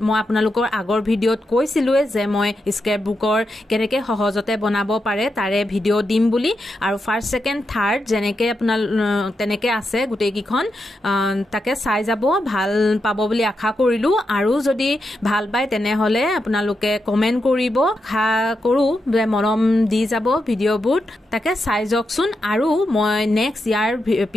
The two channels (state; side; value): normal; both; correlation 0.86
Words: মই আপোনালোকৰ আগৰ ভিডিওত কৈছিলো যে মই স্ক্ৰেপ বুকৰ কেনেকে সহজতে বনাব পাৰে তাৰে ভিডিও দিম বুলি আৰু ফাৰ্স্ট সেকেন্ড থাৰ্ড যেনেকে আপোনাল তেনেকে আছে গুটেই কিখন তাকে চাই যাব ভাল পাব বুলি আশা কৰিলো আৰু যদি ভাল পায় তেনে হলে আপোনালোকে কমেন্ট কৰিব আশা কৰো যে মৰম দি যাব ভিডিওবোৰ তাকে চাই যকচোন আৰু মই নেক্সট ইয়াৰ